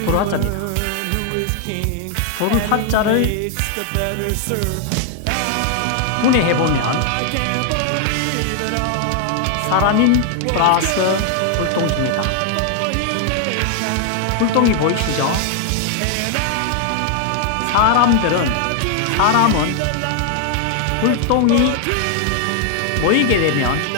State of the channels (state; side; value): different; both; correlation 0.00